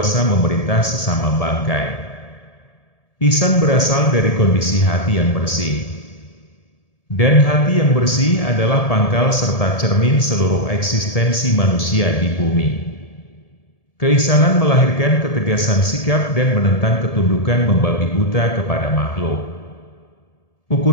memerintah sesama bangkai. Ihsan berasal dari kondisi hati yang bersih. Dan hati yang bersih adalah pangkal serta cermin seluruh eksistensi manusia di bumi. Keihsanan melahirkan ketegasan sikap dan menentang ketundukan membabi buta kepada makhluk.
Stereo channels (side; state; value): right; late; 1.7 ms